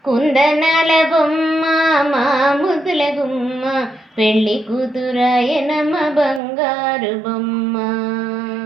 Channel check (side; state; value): left; drops out; at 6.4 s